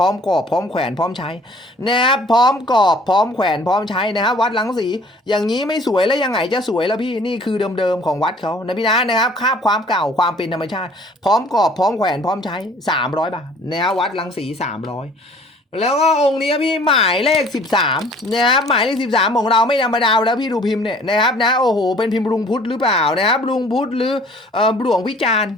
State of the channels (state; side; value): normal; both; correlation 0.53